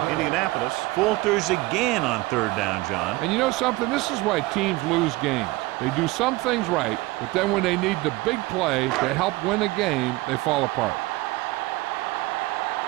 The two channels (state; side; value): quieter; left; 20.7 dB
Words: Indianapolis falters again on third down, John. And you know something? This is why teams lose games. They do some things right, but then when they need the big play to help win a game, they fall apart.